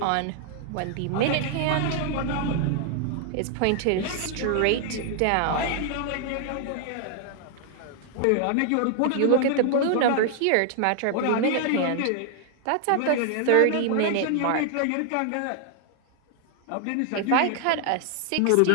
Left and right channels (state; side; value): different; both; correlation 0.00